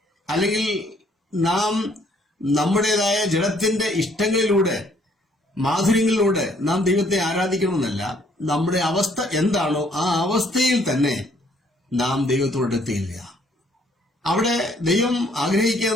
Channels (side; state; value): both; normal; correlation 0.64